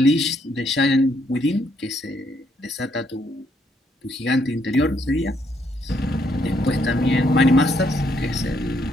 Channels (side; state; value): both; normal; correlation 0.72